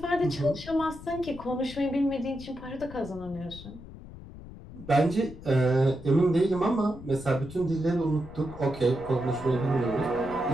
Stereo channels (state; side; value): noise; left; rumble, 15 dB below the sound